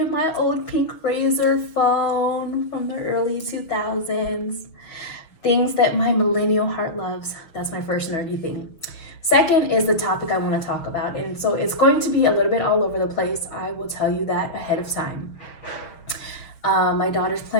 my old pink Razor phone from the early 2000s. Things that my millennial heart loves. That's my first nerdy thing. Second is the topic I want to talk about. And so it's going to be a little bit all over the place. I will tell you that ahead of time. My daughter's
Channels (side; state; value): right; late; 6.4 ms